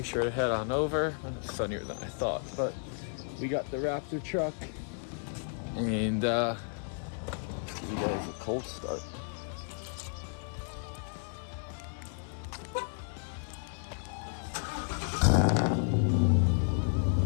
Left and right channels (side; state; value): right; silent; 56 dB below the other